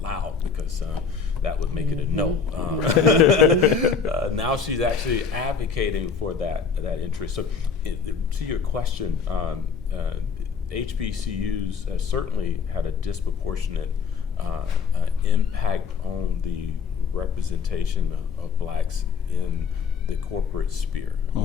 loud because that would make it a no. Now she's actually advocating for that interest. So to your question, HBCUs have certainly had a disproportionate impact on the representation of blacks in the corporate sphere.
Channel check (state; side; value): quieter; right; 5.7 dB